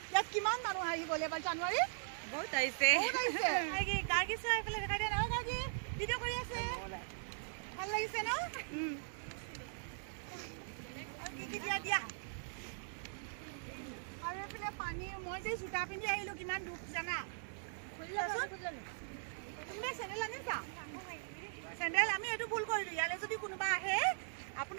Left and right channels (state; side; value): silent; left; digital silence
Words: ইয়াত কিমান মানুহ আহি গ'ল এবাৰ জানুৱাৰী বহুত আহিছে গাৰ্গী চোৱা এইফালে দেখাই দিয়া নহয় গাৰ্গী ভিডিঅ' কৰি আছে ভাল লাগিছে ন আৰু কি দিয়া আৰু এইফালে পানী মই যে জোতা পিন্ধি আহিলোঁ কিমান দুখ জানা কোনোবাই চেণ্ডেল আনিছা চেণ্ডেল আমি এইটো ভুল কৰিলোঁ ইয়ালৈ যদি কোনোবা আহে